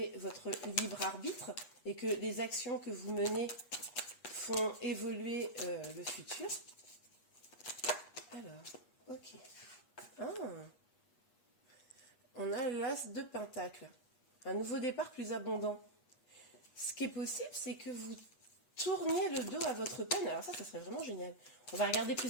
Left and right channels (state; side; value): late; right; 8.3 ms